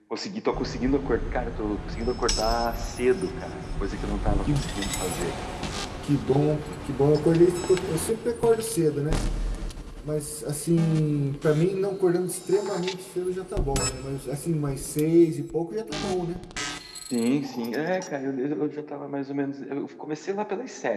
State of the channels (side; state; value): both; identical; correlation 1.00